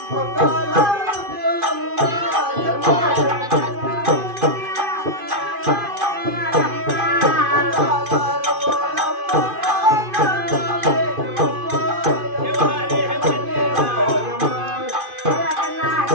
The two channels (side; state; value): left; late; 2.5 ms